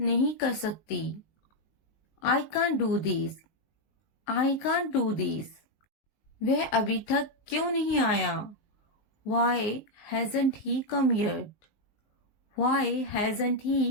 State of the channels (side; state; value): right; late; 19 ms